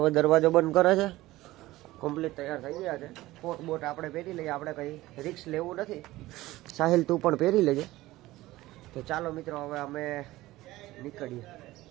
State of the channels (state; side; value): quieter; left; 17.4 dB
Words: હવે દરવાજો બંધ કરે છે. કમ્પ્લીટ તૈયાર થઈ ગયા છે. કોટ બોટ આપણે પહેરી લઈએ, આપણે કઈ રિક્સ લેવું નથી. સાહિલ તું પણ પહેરી લેજે. તો ચાલો મિત્રો, હવે અમે નીકળીએ.